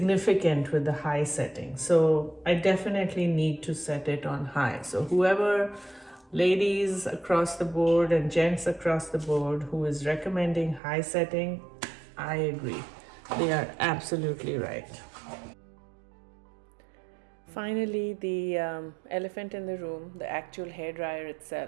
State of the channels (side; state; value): left; drops out; at 10.8 s